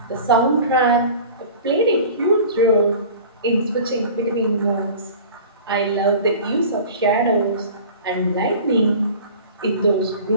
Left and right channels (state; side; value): inverted; both; correlation -0.41